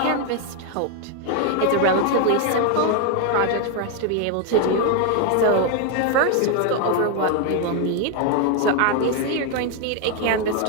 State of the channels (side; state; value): both; different; correlation 0.01